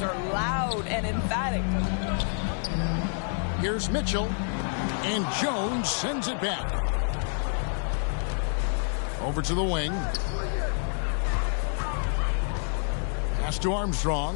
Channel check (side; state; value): right; silent; 59 dB below the other